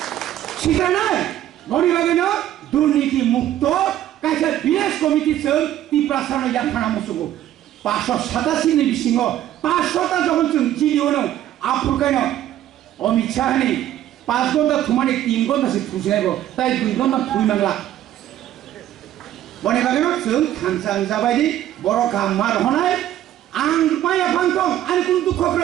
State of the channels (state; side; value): quieter; left; 12.4 dB